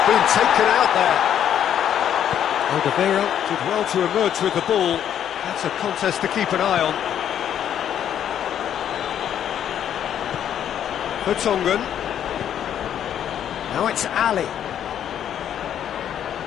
been taken out there. Alderweireld did well to emerge with the ball. That's a contest to keep an eye on. Vertonghen. Now it's Ali.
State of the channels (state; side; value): quieter; right; 9.8 dB